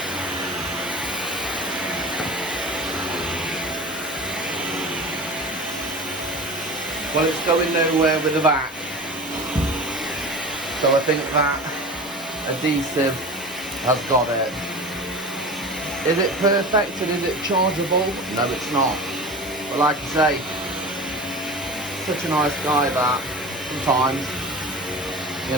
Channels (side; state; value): both; normal; correlation 0.34